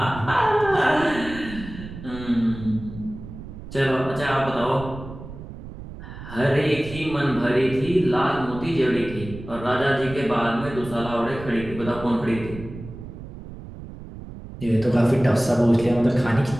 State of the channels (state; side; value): noise; right; rumble, 13 dB below the sound